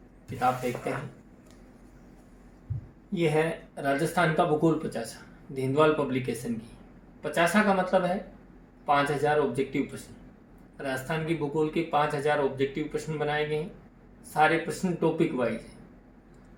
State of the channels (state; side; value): identical; both; correlation 1.00